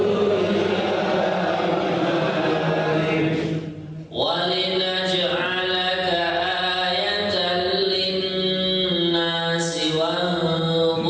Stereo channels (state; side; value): identical; both; correlation 1.00